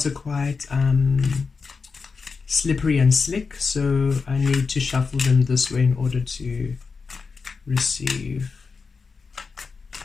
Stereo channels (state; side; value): quieter; right; 4.9 dB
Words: are quite slippery and slick, so I need to shuffle them this way in order to receive.